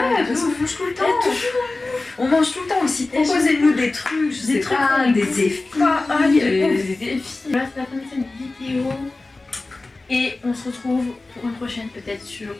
parce qu'on mange tout le temps. On mange tout le temps aussi. Proposez-nous des trucs, je sais pas, des défis. Des défis. Voilà, c'est la fin de cette vidéo. Et on se retrouve pour une prochaine, peut-être sur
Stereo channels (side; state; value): right; quieter; 3.2 dB